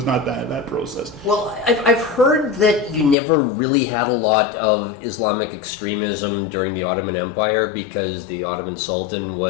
not that process. Well, I've heard that you never really had a lot of Islamic extremism during the Ottoman Empire because the Ottoman Sultan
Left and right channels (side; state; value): right; drops out; at 3.2 s